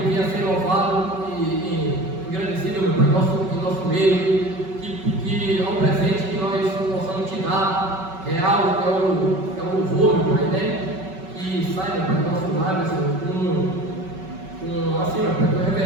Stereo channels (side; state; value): left; late; 5.3 ms